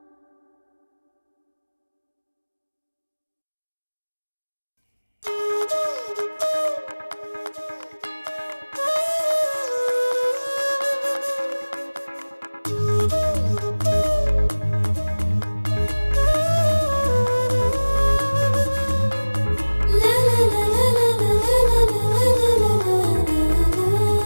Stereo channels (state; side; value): inverted; both; correlation -1.00